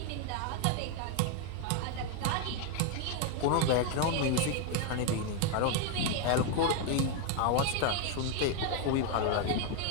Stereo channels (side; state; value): both; different; correlation 0.01